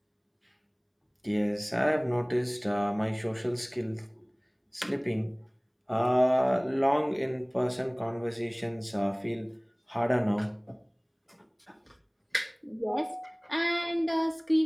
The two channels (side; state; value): both; identical; correlation 1.00